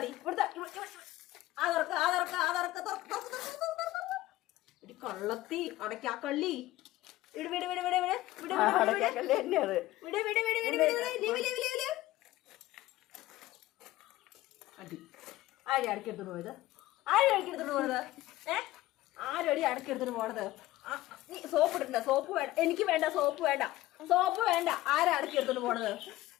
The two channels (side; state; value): right; quieter; 16.6 dB